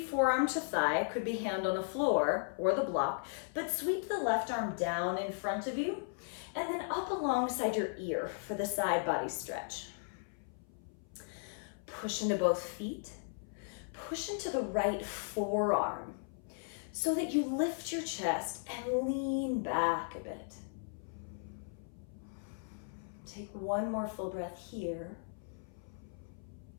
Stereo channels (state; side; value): silent; right; 53 dB below the other